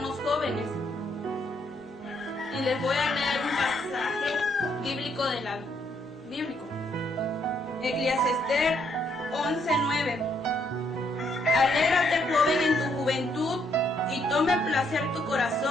los jóvenes. Y les voy a leer un pasaje bíblico bíblico. Eclesiastés 11:9. Alégrate, joven, en tu juventud, y tome placer tu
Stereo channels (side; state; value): both; normal; correlation 0.72